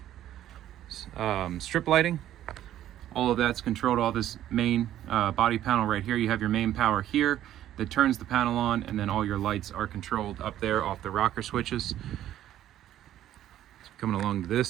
strip lighting. All of that's controlled, all this main body panel right here. You have your main power here that turns the panel on, and then all your lights are controlled up there off the rocker switches. Coming along to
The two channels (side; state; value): left; quieter; 12.2 dB